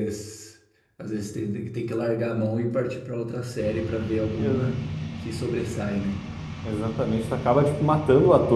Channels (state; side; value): identical; both; correlation 1.00